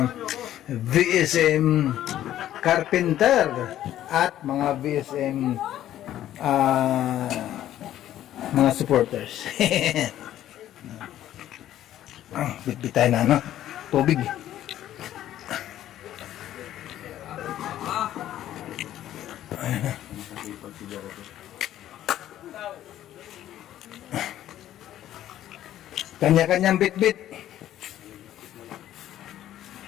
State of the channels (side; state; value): right; quieter; 12.4 dB